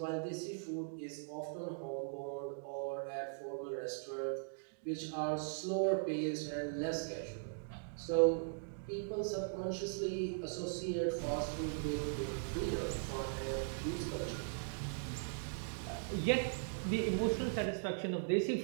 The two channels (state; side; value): silent; left; digital silence